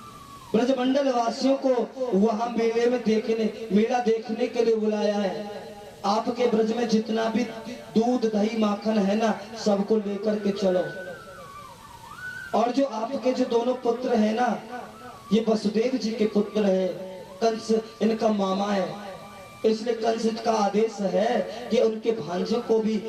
ब्रजमंडल वासियों को वहां मेला देखने के लिए बुलाया है। आपके ब्रज में जितना भी दूध दही माखन है ना, सबको लेकर के चलो। और जो आपके जो दोनों पुत्र है ना, ये वसुदेव जी के पुत्र है, कंस इनका मामा है, इसलिए कंस का आदेश है कि उनके भांजे को भी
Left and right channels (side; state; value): both; identical; correlation 1.00